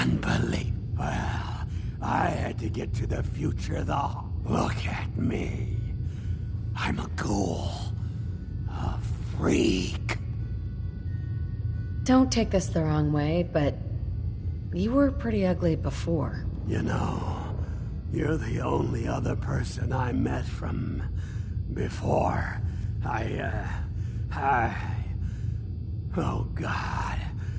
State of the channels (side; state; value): both; identical; correlation 1.00